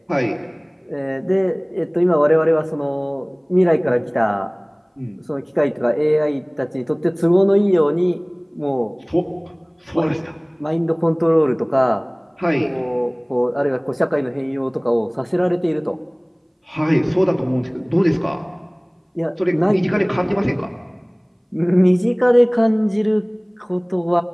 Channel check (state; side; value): identical; both; correlation 1.00